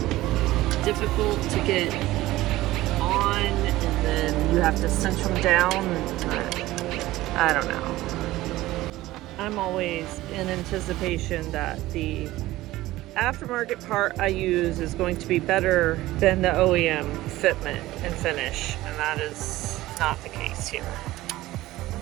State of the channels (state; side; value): quieter; left; 17.0 dB